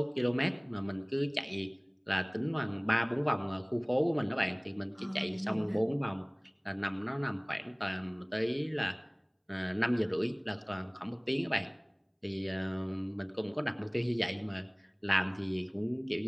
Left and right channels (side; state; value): both; identical; correlation 1.00